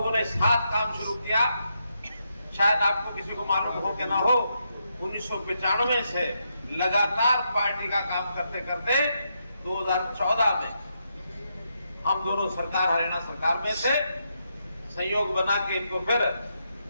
ने साथ काम शुरू किया। शायद आपको किसी को मालूम हो कि ना हो, 1995 से लगातार पार्टी का काम करते करते 2014 में हम दोनों सरकार, हरियाणा सरकार में से संयोग बना के इनको फिर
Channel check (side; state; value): both; inverted; correlation -0.81